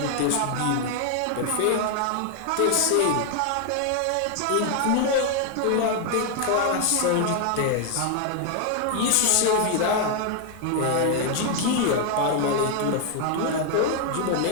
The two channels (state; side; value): different; both; correlation 0.00